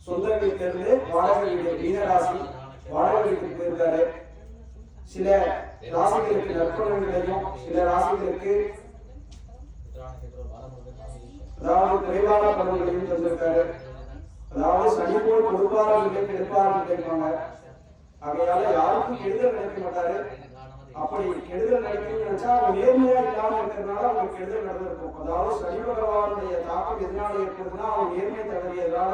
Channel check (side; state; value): both; identical; correlation 1.00